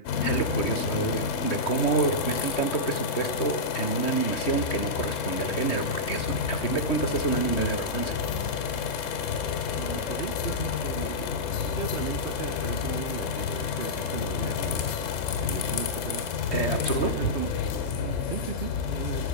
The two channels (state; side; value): late; right; 3.7 ms